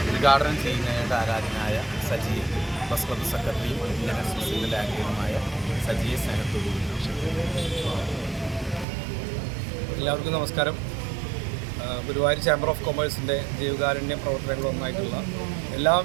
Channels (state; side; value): drops out; left; at 8.8 s